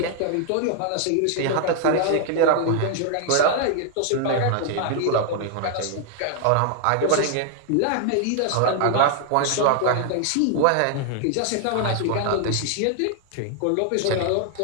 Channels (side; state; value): both; different; correlation 0.00